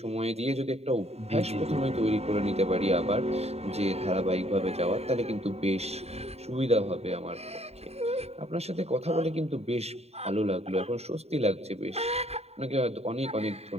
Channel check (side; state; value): left; late; 0.30 ms